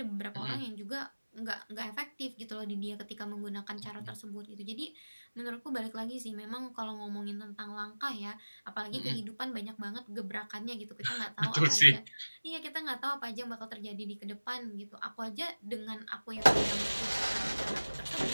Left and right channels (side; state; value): both; inverted; correlation -1.00